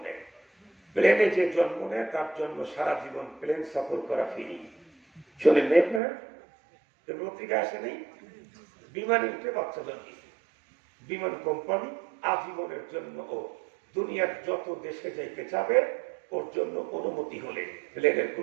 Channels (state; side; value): drops out; left; at 6.0 s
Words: নেয়। প্লেনে যে জন্ম নেয় তার জন্য সারা জীবন প্লেন সফর করা ফিরি। শোনেন নেই না, পত্রিকা আসে নেই, বিমানে উঠে বাচ্চা জন্মিয়েছে, বিমান কোম্পানি আজীবনের জন্য ও দুনিয়ার যত দেশে যাইতে চাবে ওর জন্য অনুমতি হলে প্লেনের